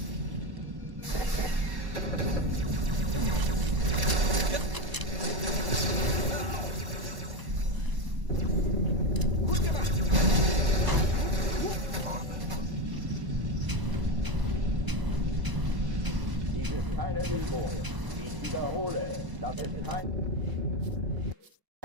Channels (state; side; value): late; left; 1.0 ms